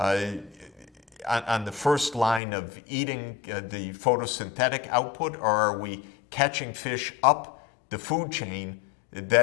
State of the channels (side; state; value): right; drops out; at 2.4 s